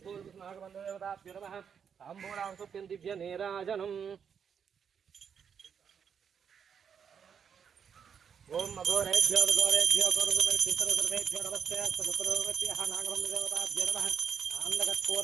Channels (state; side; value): quieter; left; 7.3 dB